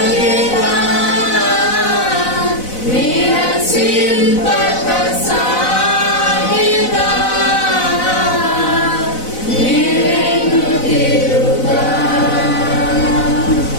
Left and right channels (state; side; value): late; right; 4.0 ms